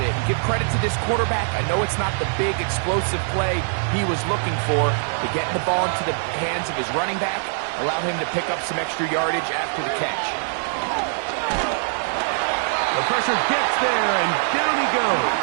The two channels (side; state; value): left; silent; digital silence